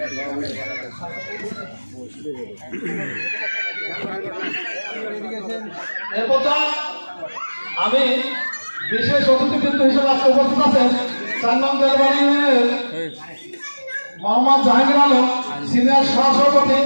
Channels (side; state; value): both; inverted; correlation -1.00